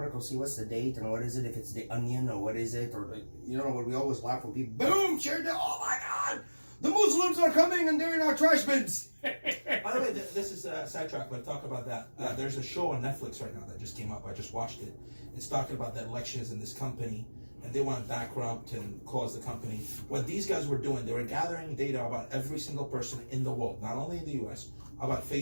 see what's the date and what is it, if it's the Onion or what is it, or you know what we always laugh when people, boom, shared it, oh my God, the Muslims are coming and they're in our trash bins. By the way, this is a sidetrack, but talk about that. There's a show on Netflix right now that just came up. I just watched it. It's talking about the elections in this company, and they want to bankrupt and close the company. What these guys were doing, they were gathering data about every single person in the world, not only in the US, about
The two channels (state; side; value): inverted; both; correlation -1.00